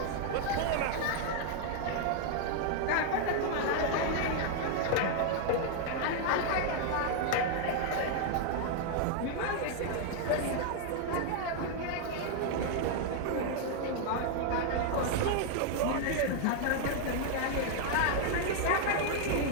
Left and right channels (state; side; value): different; both; correlation 0.00